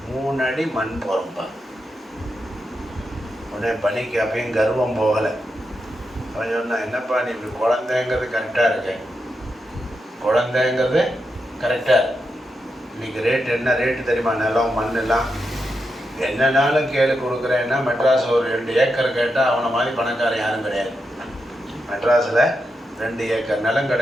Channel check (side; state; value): both; normal; correlation 0.86